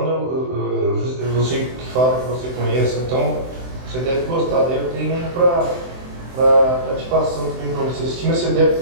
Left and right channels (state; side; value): late; left; 23 ms